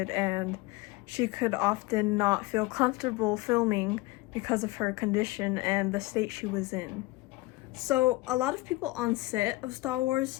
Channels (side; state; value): right; quieter; 20.9 dB